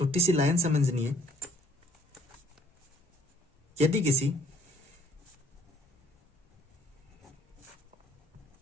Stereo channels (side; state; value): both; normal; correlation 0.60